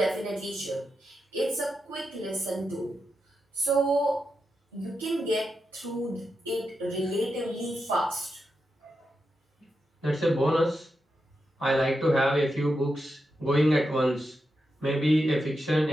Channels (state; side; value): normal; both; correlation 0.87